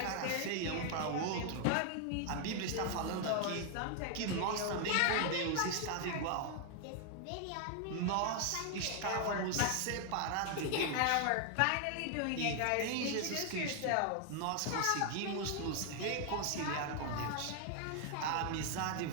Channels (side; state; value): both; different; correlation 0.00